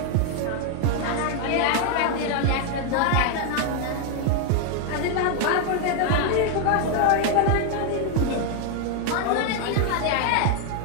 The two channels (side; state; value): both; different; correlation 0.01